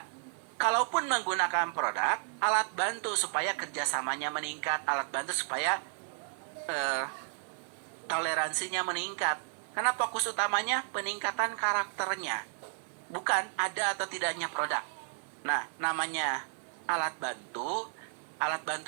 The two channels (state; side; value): silent; left; digital silence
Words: Kalaupun menggunakan produk, alat bantu supaya kerjasamanya meningkat, alat bantu supaya toleransinya meningkat. Karena fokus utamanya peningkatan karakternya, bukan ada atau tidaknya produk. Nah, namanya alat bantu